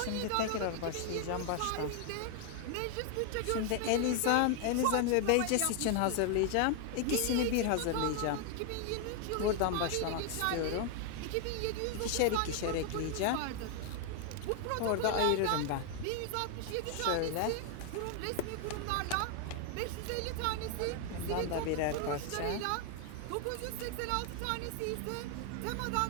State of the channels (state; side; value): different; both; correlation 0.00